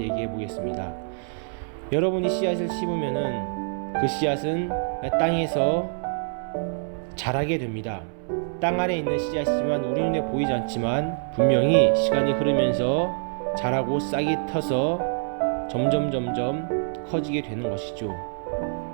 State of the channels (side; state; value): left; silent; 61 dB below the other